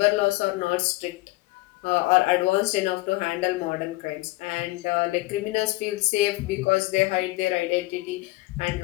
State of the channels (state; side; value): quieter; right; 20.3 dB